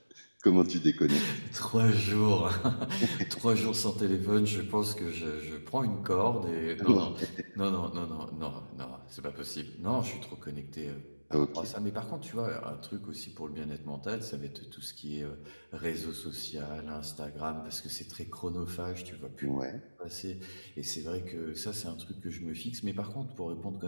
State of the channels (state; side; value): inverted; both; correlation -1.00